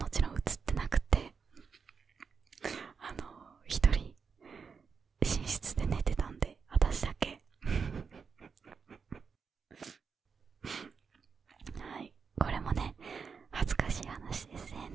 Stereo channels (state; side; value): quieter; left; 5.7 dB